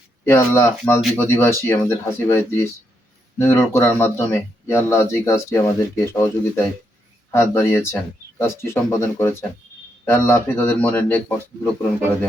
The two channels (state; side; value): normal; both; correlation 0.79